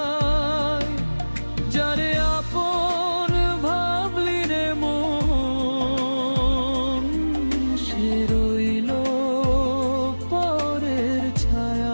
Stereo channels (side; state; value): both; inverted; correlation -1.00